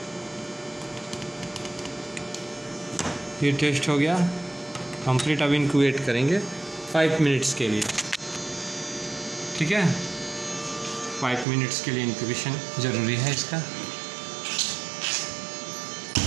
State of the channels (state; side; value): drops out; left; at 11.5 s